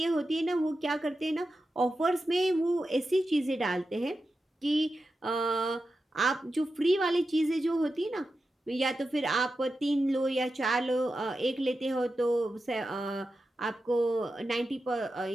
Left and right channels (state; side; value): normal; both; correlation 0.91